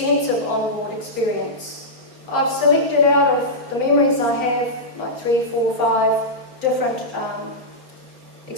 on-board experience. I've selected out of the memories I have, like 3, 4, 5 different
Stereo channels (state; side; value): late; right; 3.9 ms